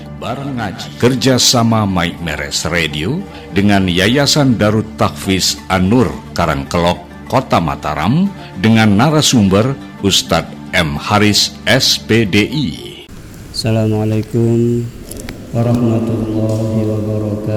Kerjasama Mike Meres Radio dengan Yayasan Darut Tahfiz An-Nur Karangkelok, Kota Mataram, dengan narasumber Ustadz M. Haris SPDI. Assalamualaikum warahmatullahi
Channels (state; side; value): identical; both; correlation 1.00